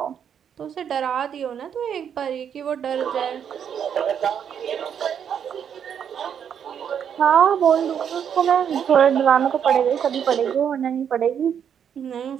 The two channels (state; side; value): quieter; left; 8.3 dB